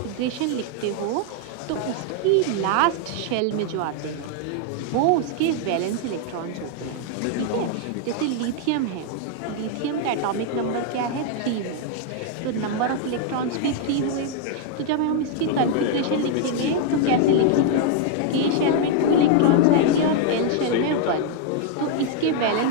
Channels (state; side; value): different; both; correlation 0.00